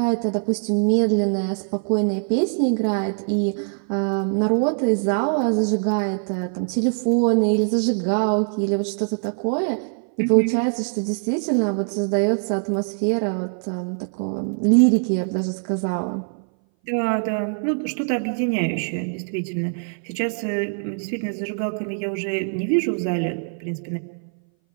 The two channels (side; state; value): left; silent; 60 dB below the other